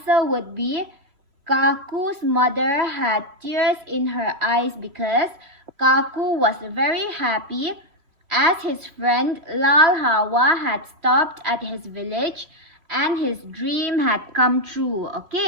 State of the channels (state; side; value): late; left; 3.0 ms